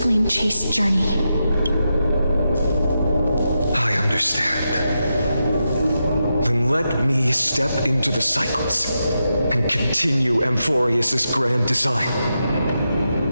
flame-chased journey. I understand. Then let me step into the cycles and continue Amphoreus' grand design.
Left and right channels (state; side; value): inverted; both; correlation -0.87